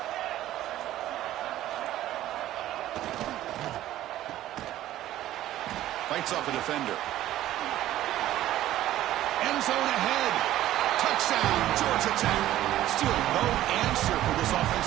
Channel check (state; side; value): quieter; left; 13.8 dB